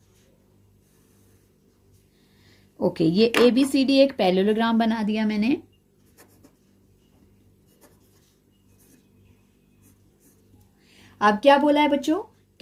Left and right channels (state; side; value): identical; both; correlation 1.00